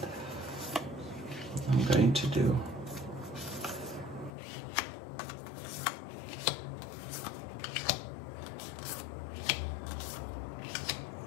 I'm going to do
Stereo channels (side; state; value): right; drops out; at 4.3 s